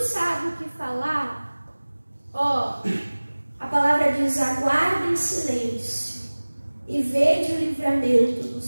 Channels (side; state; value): both; inverted; correlation -1.00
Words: sabe o que falar? Ó, a palavra diz: aguarde em silêncio e vede o livramento do